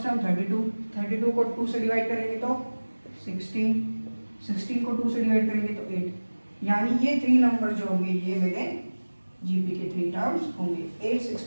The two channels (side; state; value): both; inverted; correlation -1.00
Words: टर्म 32 को 2 से डिवाइड करेंगे तो 16 को 2 से डिवाइड करेंगे तो 8, यानी ये 3 नंबर जो होंगे ये मेरे जीपी के 3 टर्म्स होंगे, 8,